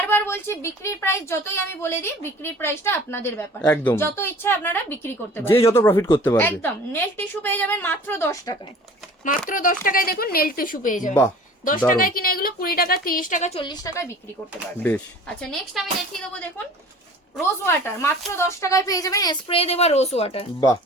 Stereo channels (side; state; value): both; normal; correlation 0.45